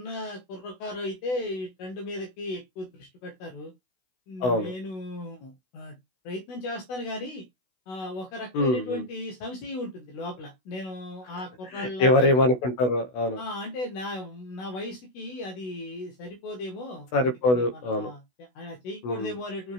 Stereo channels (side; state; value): right; late; 16 ms